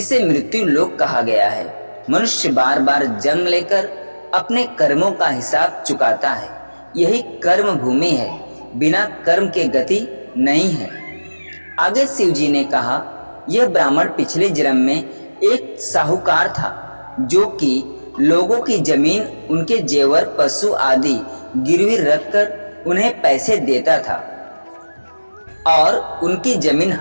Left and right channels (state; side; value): inverted; both; correlation -1.00